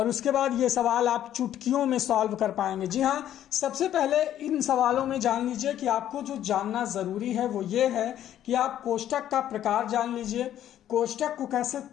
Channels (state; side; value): quieter; right; 11.4 dB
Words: उसके बाद ये सवाल आप चुटकियों में सॉल्व कर पाएंगे। जी हाँ, सबसे पहले इन सवालों में जान लीजिए कि आपको जो जानना जरूरी है वो ये है कि आप कोष्टक का प्रकार जान लीजिए, कोष्टक को कैसे